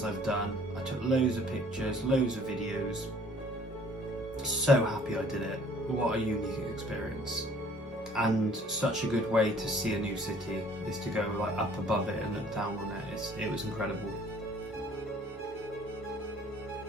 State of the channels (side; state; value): both; normal; correlation 0.56